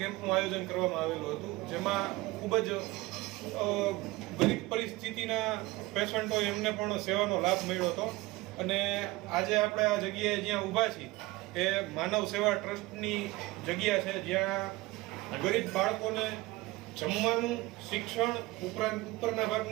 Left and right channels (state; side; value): quieter; left; 20.3 dB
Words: કેમ્પનું આયોજન કરવામાં આવેલું હતું, જેમાં ખૂબ જ ગરીબ પરિસ્થિતિના પેશન્ટો એમને પણ સેવાનો લાભ મળ્યો હતો. અને આજે આપણે આ જગ્યાએ જ્યાં ઊભા છીએ એ માનવ સેવા ટ્રસ્ટની જગ્યા છે, જ્યાં ગરીબ બાળકોને જમવાનું, શિક્ષણ ઉપરાંત ઉપરના